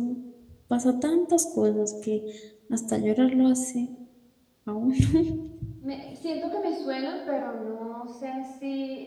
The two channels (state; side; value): identical; both; correlation 1.00